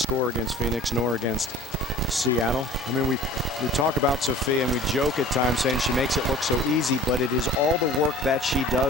against Phoenix nor against Seattle. I mean, we talk about Sophia and we joke at times saying she makes it look so easy, but it is all the work that she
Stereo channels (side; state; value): both; normal; correlation 0.44